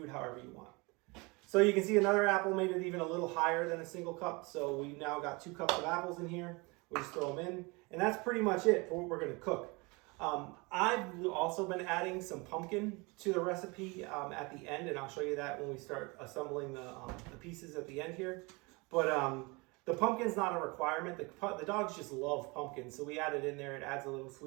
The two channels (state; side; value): quieter; left; 27.0 dB